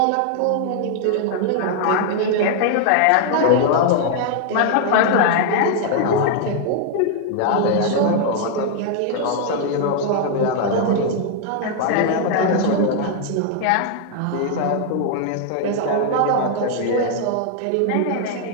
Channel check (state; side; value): different; both; correlation 0.00